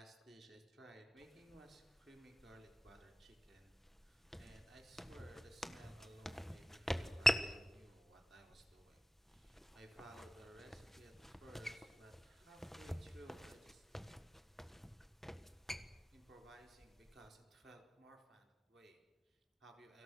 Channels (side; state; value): both; normal; correlation 0.96